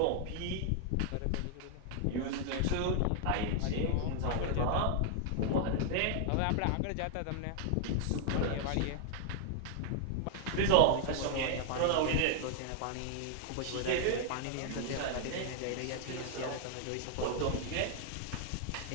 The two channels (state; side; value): different; both; correlation 0.00